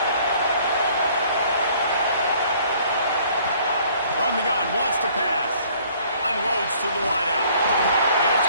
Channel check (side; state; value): both; inverted; correlation -0.58